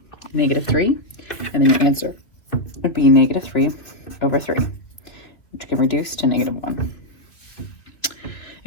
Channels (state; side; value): late; right; 2.8 ms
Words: -3. And then your answer would be -3 over 3, which can reduce to -1.